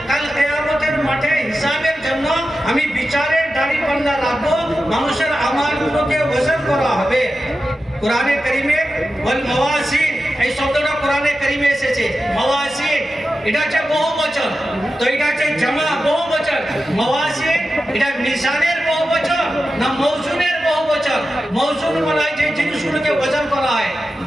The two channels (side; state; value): both; normal; correlation 0.92